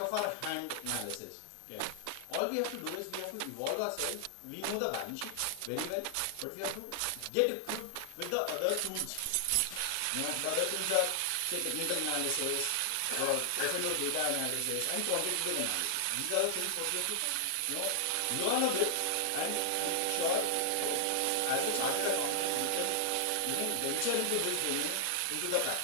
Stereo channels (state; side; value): different; both; correlation 0.00